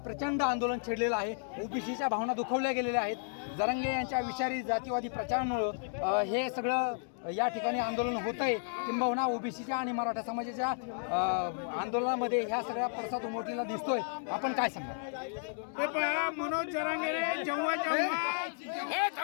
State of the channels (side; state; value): right; silent; digital silence